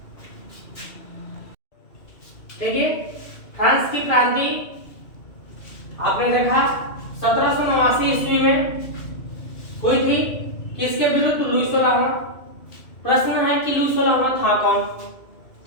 देखिए फ्रांस की क्रांति आपने देखा 1789 ईस्वी में हुई थी। किसके विरुद्ध? लुई 16वां। प्रश्न है कि लुई 16वां था कौन?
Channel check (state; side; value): late; right; 2.5 ms